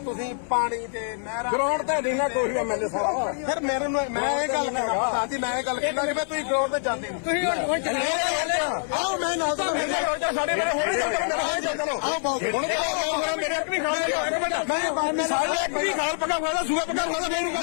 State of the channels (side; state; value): right; silent; digital silence